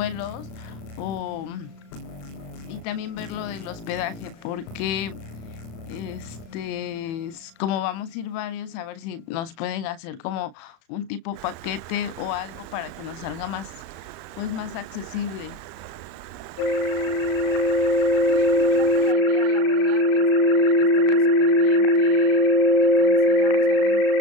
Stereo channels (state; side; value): late; right; 35 ms